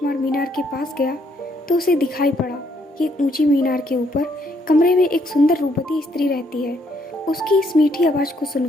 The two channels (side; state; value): both; normal; correlation 0.71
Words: मीनार के पास गया तो उसे दिखाई पड़ा कि ऊंची मीनार के ऊपर कमरे में एक सुंदर रूपवती स्त्री रहती है। उसकी इस मीठी आवाज को